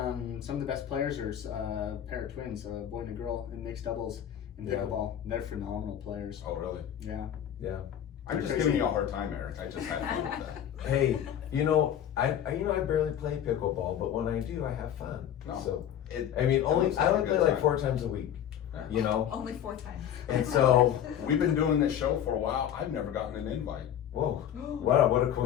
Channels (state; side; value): quieter; right; 10.1 dB